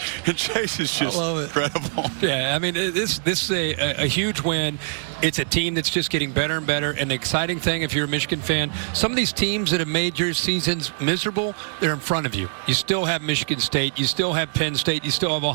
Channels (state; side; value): silent; left; digital silence